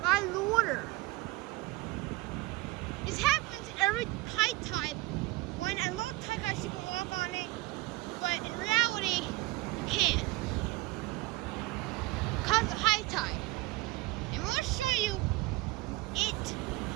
the water. This happens every high tide. When at low tide, guys, you can walk on it, but in reality, you can't because of high tide. And we'll show you it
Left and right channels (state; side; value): quieter; left; 20.6 dB